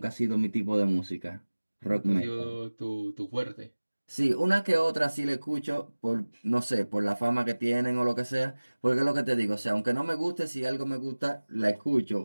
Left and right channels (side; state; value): both; inverted; correlation -1.00